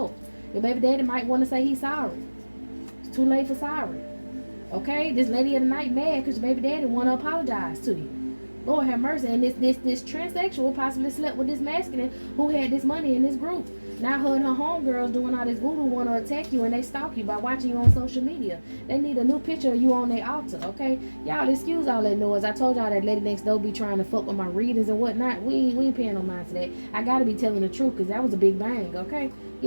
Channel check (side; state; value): both; inverted; correlation -1.00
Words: Your baby daddy might want to say he's sorry. It's too late for sorry. Okay, this lady of the night mad because your baby daddy want to apologize to you. Lord have mercy. And this transsexual possibly slept with this masculine who had this money in this group. Now her and her homegirls doing all this voodoo want to attack you, and they stalk you by watching you on social media. They need a new picture of you on their altar, okay? Y'all excuse all that noise. I told y'all that lady next door be trying to fuck with my readings and whatnot. We ain't paying no mind to that. I gotta be telling the truth, because that was a big bang, okay?